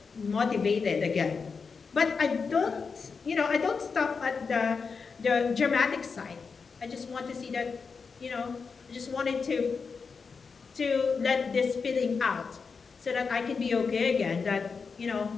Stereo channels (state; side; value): quieter; right; 5.2 dB